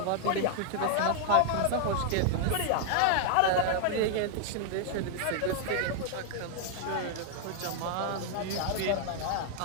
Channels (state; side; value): different; both; correlation 0.00